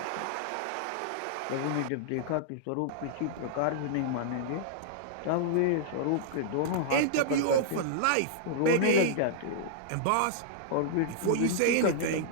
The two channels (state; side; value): different; both; correlation -0.02